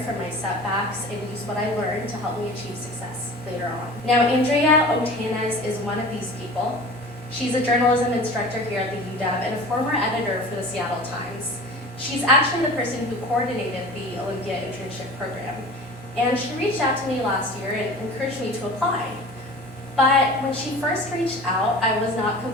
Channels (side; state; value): both; normal; correlation 0.38